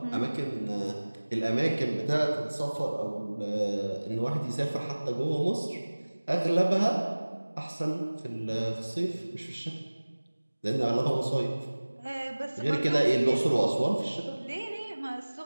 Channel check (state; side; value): inverted; both; correlation -1.00